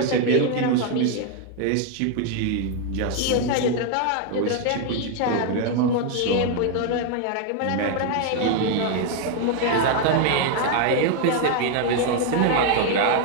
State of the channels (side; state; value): both; different; correlation 0.00